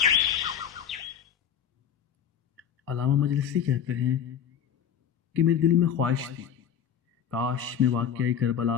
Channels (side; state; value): right; quieter; 8.6 dB